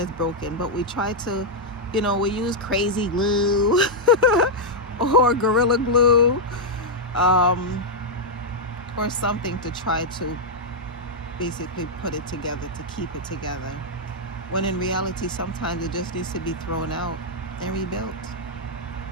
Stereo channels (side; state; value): both; normal; correlation -0.04